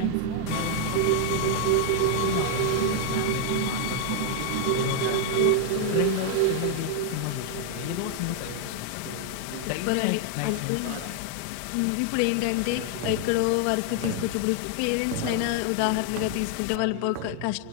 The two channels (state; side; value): different; both; correlation 0.00